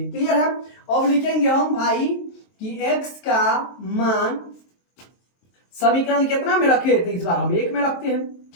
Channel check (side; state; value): right; late; 23 ms